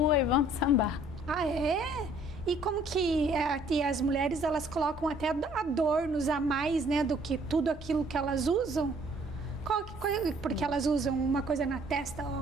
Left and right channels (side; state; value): both; normal; correlation 0.59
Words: e vão sambar. Ah, é? E como que as mulheres, elas colocam até adornos a mais, né, do que tudo aquilo que elas usam? Porque elas usam uma coisa na testa,